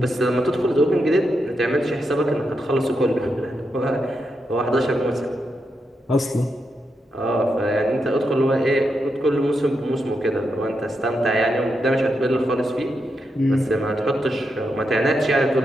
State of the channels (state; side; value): normal; both; correlation 0.84